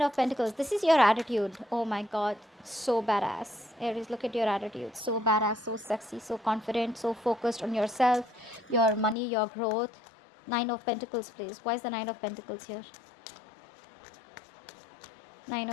Pentacles? This is your attitude. Oh my god. So badass. Aries, look at your attitude. So badass, so sexy, so confident, so focused on yourself, your money, your growth. Nine of Pentacles, please. Why is the Nine of Pentacles here? Nine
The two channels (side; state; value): right; drops out; at 9.2 s